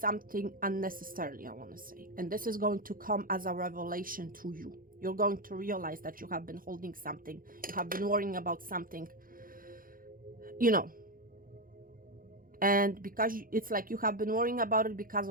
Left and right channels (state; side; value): late; left; 0.41 ms